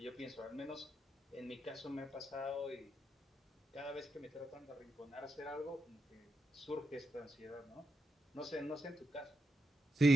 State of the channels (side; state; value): both; normal; correlation 0.85